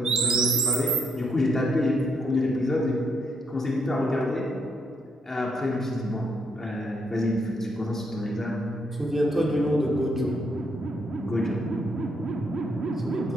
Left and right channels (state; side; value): normal; both; correlation 0.74